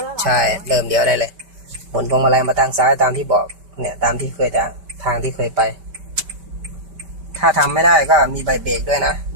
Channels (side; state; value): left; late; 5.1 ms